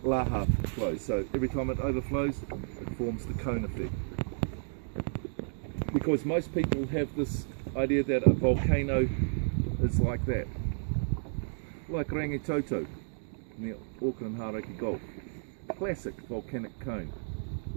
laha flows, so every time it overflows, it forms the cone effect. Because most people have this idea that a volcano is like that, like Rangitoto near Auckland Hauraki Gulf, classic volcanic cone.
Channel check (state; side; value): silent; left; digital silence